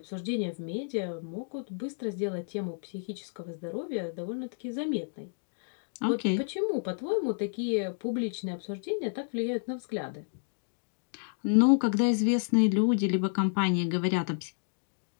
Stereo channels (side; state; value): right; silent; digital silence